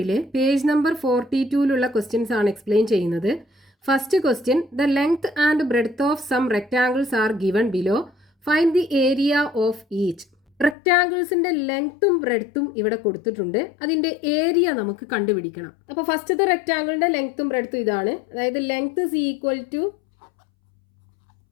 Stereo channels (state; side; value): drops out; right; at 10.8 s